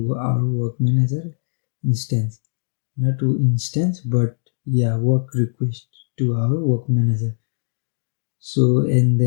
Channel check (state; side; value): silent; right; digital silence